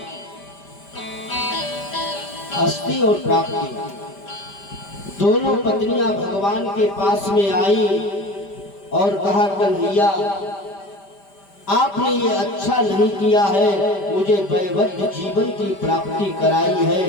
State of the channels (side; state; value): right; late; 5.1 ms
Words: अस्थि और प्राप्ति दोनों पत्नियां भगवान के पास में आई और कहा, कन्हैया आपने ये अच्छा नहीं किया है, मुझे वैवध्य जीवन की प्राप्ति कराई है,